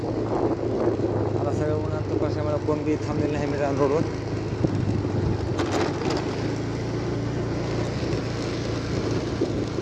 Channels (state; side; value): identical; both; correlation 1.00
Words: आता सगळं उन्हात कशामुळे कोण बी थांबलेलं नाही मित्रांनो रोडवर.